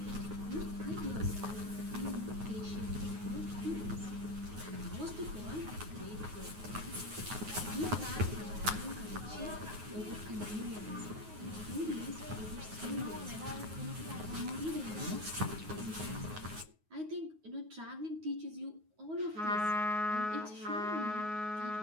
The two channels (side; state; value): left; late; 9.4 ms